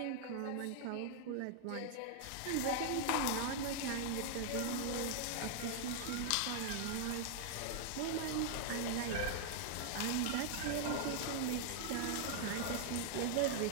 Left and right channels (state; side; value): different; both; correlation -0.01